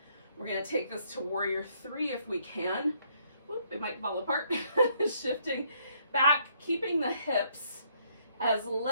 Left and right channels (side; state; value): both; inverted; correlation -0.69